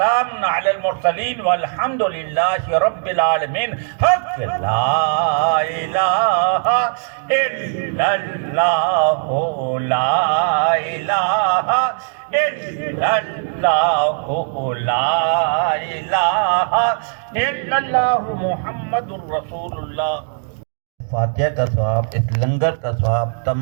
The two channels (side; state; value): left; silent; digital silence